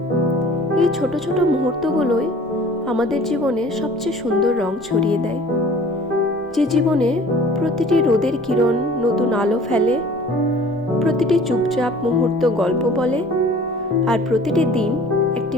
এই ছোট ছোট মুহূর্তগুলোই আমাদের জীবনে সবচেয়ে সুন্দর রং ছড়িয়ে দেয়। যে জীবনে প্রতিটি রোদের কিরণ নতুন আলো ফেলে, প্রতিটি চুপচাপ মুহূর্ত গল্প বলে, আর প্রতিটি দিন একটি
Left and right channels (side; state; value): both; normal; correlation 0.48